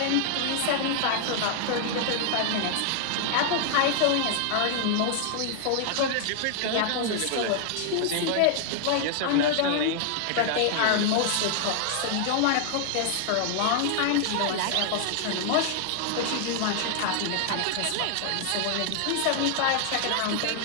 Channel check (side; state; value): both; different; correlation 0.00